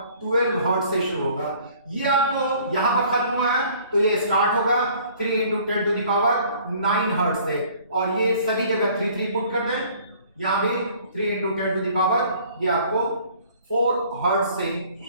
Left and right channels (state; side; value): inverted; both; correlation -0.54